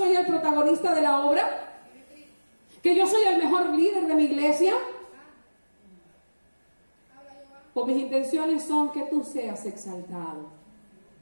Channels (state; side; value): inverted; both; correlation -1.00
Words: el protagonista de la obra, que yo soy el mejor líder de mi iglesia. O mis intenciones son que tú seas exaltado,